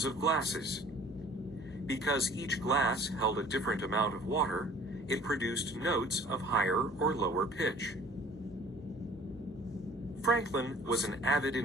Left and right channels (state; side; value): normal; both; correlation 0.49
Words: of glasses. Because each glass held a different amount of water, it produced notes of higher or lower pitch. Franklin was an avid